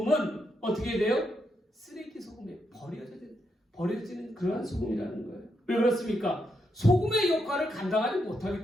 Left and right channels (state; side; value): normal; both; correlation 0.81